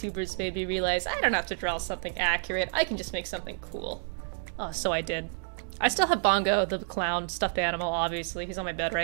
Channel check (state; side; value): silent; left; digital silence